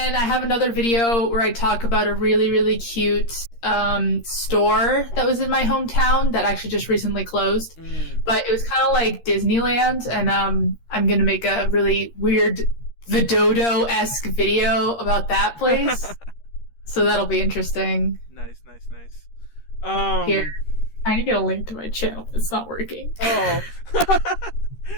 I have another video where I talk about a really, really cute store that was in my hometown that actually just recently closed. But it was kind of like Disneyland, and I'm going to make a really weird Vidodo-esque video about that place. So that'll be interesting. Nice. Here. I need to get a link to my channel. It's not working. Oh.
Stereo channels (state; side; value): late; right; 13 ms